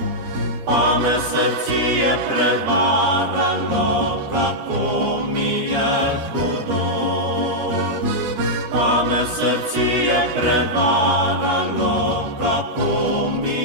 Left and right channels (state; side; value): late; left; 13 ms